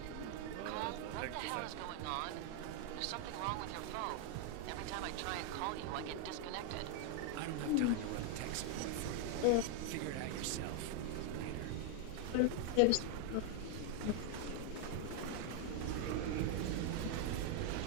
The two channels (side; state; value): both; different; correlation 0.00